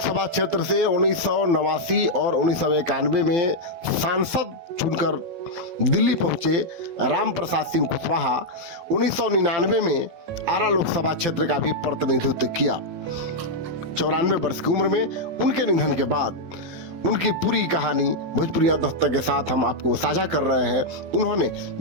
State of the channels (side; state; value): left; late; 12 ms